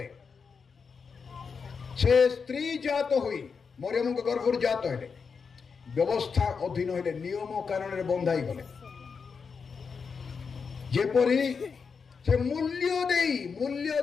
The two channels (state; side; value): quieter; right; 5.6 dB